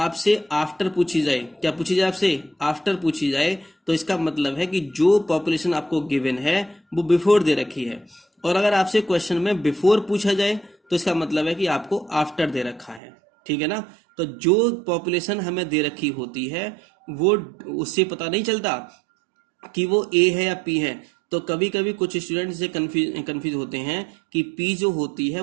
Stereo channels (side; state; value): left; drops out; at 13.0 s